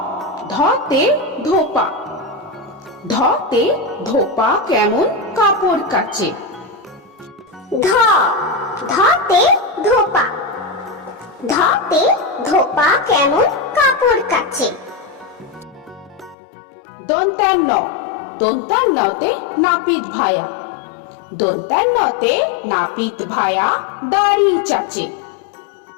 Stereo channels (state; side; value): drops out; right; at 16.4 s